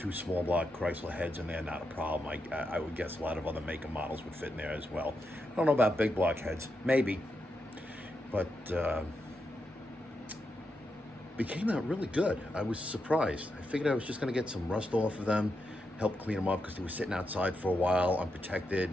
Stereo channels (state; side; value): normal; both; correlation 0.85